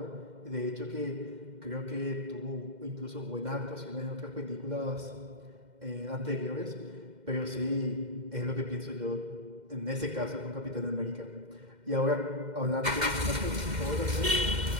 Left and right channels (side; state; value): left; late; 2.1 ms